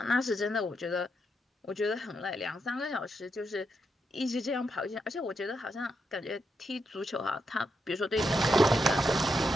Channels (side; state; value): both; normal; correlation 0.83